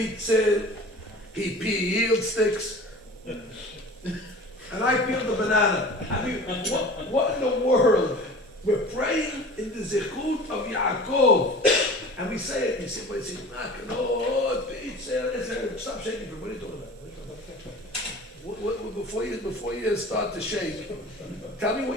he peeled sticks. And I peeled the banana. I mean, what in the world? We're praying in the Zechut of Yaakov. And we say it, you say, well, it's Makalot, B'Itzel, stop shaking, what are you talking about? Before you start to shake, tell me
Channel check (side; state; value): both; normal; correlation 0.40